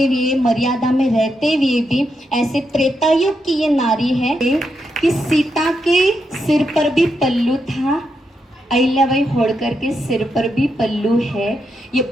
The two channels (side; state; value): both; normal; correlation 0.83